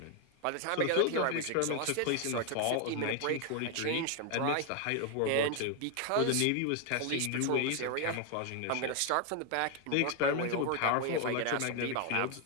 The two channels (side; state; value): both; different; correlation 0.01